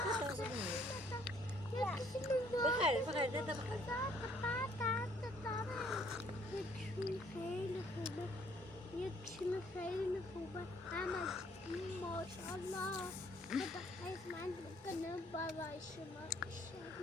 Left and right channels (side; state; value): both; normal; correlation 0.63